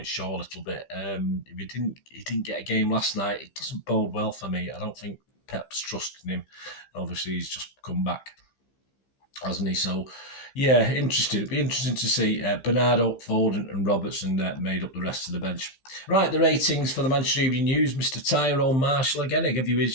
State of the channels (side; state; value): right; late; 15 ms